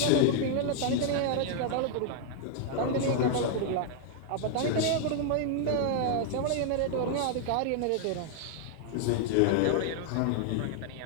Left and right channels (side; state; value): both; different; correlation 0.00